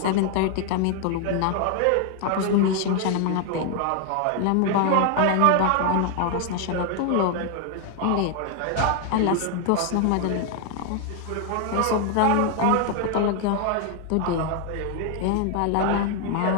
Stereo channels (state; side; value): different; both; correlation 0.00